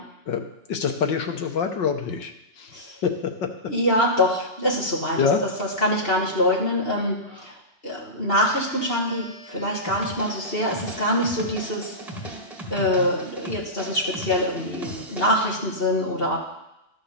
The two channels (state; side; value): late; right; 2.9 ms